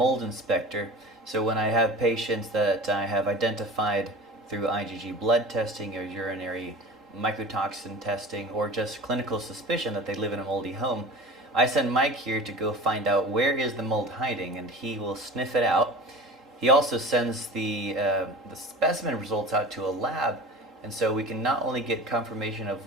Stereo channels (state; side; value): normal; both; correlation 0.37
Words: inspector. So when I have patients that I have identified through IgG blood testing or urinary mycotoxin testing or just clinical suspicion that they live in a moldy home, I send Mike here to go find out where is the mold hiding, and he will sniff it out. He also sends the specimen results out to a lab, and so we can not only get confirmation of